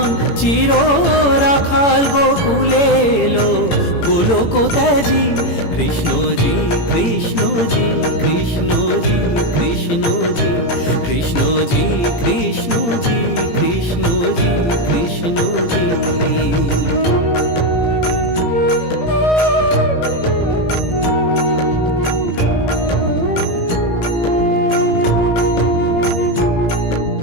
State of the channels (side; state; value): right; late; 18 ms